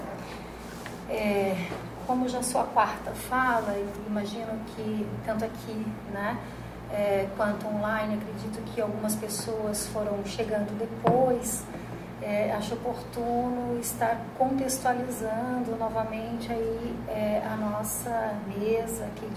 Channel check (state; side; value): identical; both; correlation 1.00